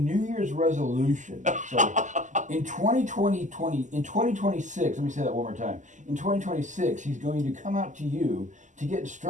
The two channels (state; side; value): late; left; 0.36 ms